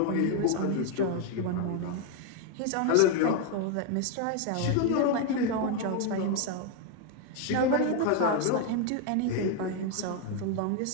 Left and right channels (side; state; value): both; different; correlation 0.01